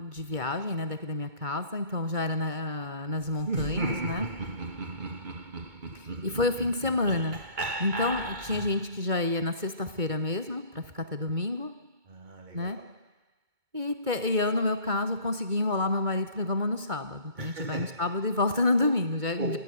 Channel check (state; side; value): late; left; 2.2 ms